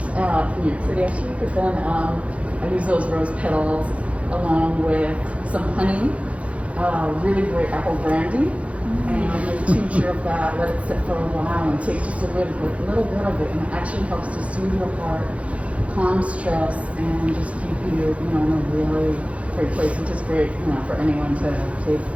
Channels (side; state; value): left; late; 0.064 ms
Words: York City actually. But then I use those rose petals along with some honey, really great apple brandy, and a tincture of that. Let it sit for a while and take just a little bit of it, and it actually helps to soothe your heart, calm stress and just keep you, you know, in a really great place, which is great, you know, for anyone to take,